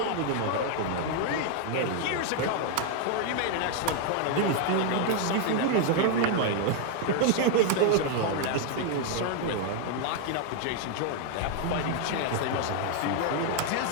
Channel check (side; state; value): both; different; correlation 0.00